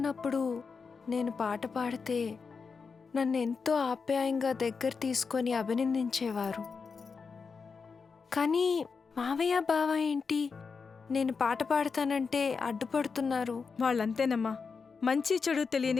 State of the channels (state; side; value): quieter; right; 5.2 dB